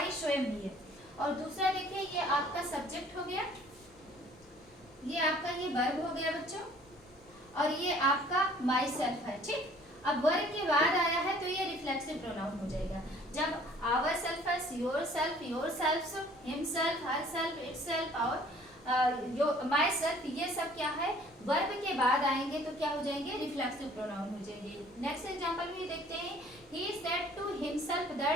स्वयं ही है। और दूसरा देखिए, ये आपका सब्जेक्ट हो गया, ये आपका ये वर्ब हो गया बच्चों, और ये आपका माई सेल्फ है। ठीक। अब वर्ब के बाद आया है तो ये रिफ्लेक्सिव प्रोनाउन हो जाएगा। जब आवर सेल्फ है, your self, him self, herself, it self और माई सेल्फ, ये सब क्या है, वर्ब के बाद आएंगे तो क्या हो जाएंगे, रिफ्लेक्सिव प्रोनाउन हो जाएंगे। नेक्स्ट एग्जांपल भी देखते हैं, he said to himself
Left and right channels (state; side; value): normal; both; correlation 0.55